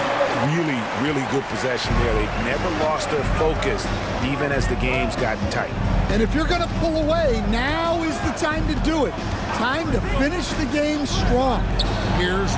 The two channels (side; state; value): both; identical; correlation 1.00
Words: Really, really good possession there. They've never lost their focus, even as the game's gotten tight. And if you're going to pull away, now is the time to do it. Time to finish the game strong. Here's